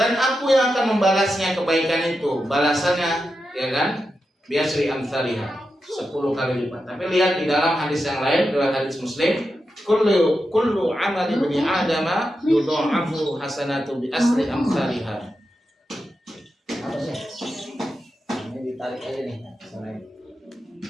aku yang akan membalasnya kebaikan itu, balasannya, ya kan? Biasri amsalihah, 10 kali lipat. Tapi lihat di dalam hadis yang lain, dalam hadis Muslim, kullu amali bani adama yudha'afu hasanatu bi asri amsalihah. Apa sih? Ini ditarik aja nih,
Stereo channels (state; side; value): normal; both; correlation 0.89